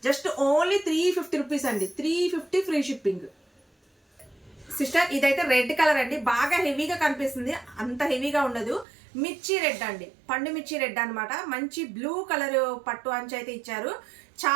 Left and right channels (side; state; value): left; drops out; at 8.8 s